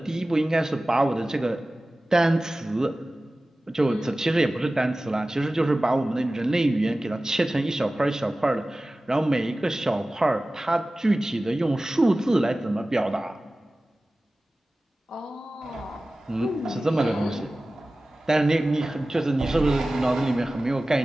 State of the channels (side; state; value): both; normal; correlation 0.97